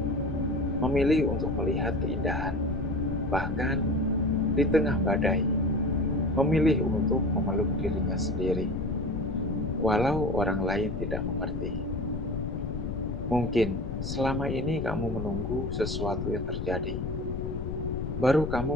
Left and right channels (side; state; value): left; noise; rumble, 4 dB below the sound